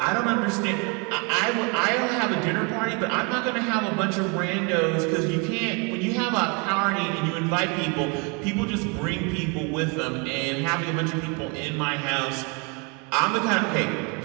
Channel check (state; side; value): quieter; left; 32.2 dB